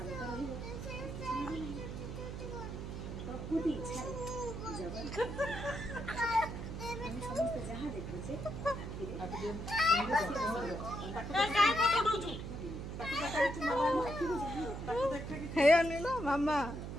रहिब प्रकृति इच्छा जगत हम समस्त जहाँ देखुचे हे अनिल मामा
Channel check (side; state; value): right; noise; hum, 6 dB below the sound